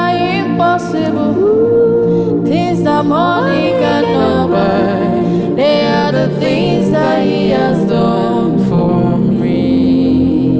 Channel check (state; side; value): identical; both; correlation 1.00